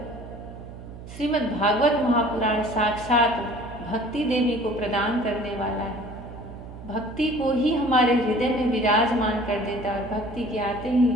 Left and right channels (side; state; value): right; noise; hum, 14 dB below the sound